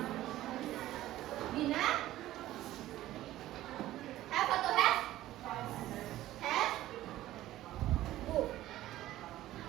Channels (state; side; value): quieter; left; 14.7 dB